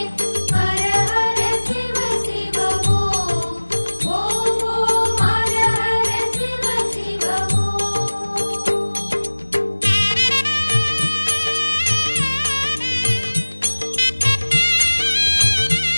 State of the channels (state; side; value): inverted; both; correlation -1.00